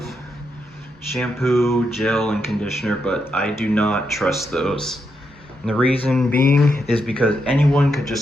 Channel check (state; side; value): normal; both; correlation 0.82